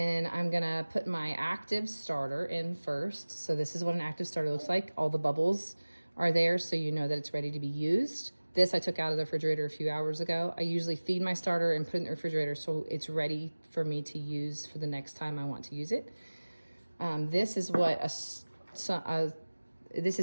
I'm gonna put my active starter in first. So this is what an active starter looks like. All the bubbles are there so you know that it's ready to be used. This I took out of the refrigerator a few hours ago. I usually feed my starter and put it in the refrigerator so it's ready for me to use for the next time I want to use it. This is what this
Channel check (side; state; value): both; inverted; correlation -1.00